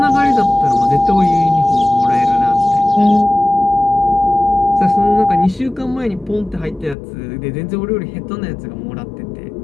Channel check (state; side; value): drops out; right; at 7.0 s